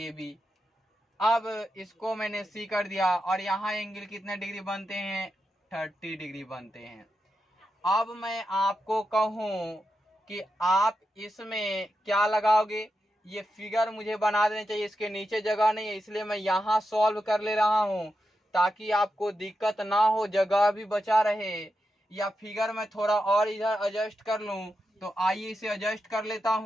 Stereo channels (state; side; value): normal; both; correlation 0.88